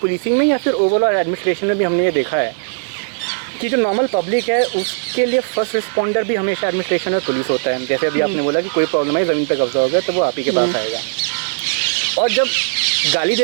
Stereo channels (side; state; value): left; silent; digital silence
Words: में या फिर ओवरऑल एडमिनिस्ट्रेशन में भी हमने ये देखा है कि जो नॉर्मल पब्लिक है उसके लिए फर्स्ट रिस्पॉन्डर भी हमेशा एडमिनिस्ट्रेशन और पुलिस होता है। जैसे अभी आपने बोला कि कोई प्रॉब्लम है, ज़मीन पर कब्जा हो गया, तो वो आप ही के पास आएगा। और जब गाली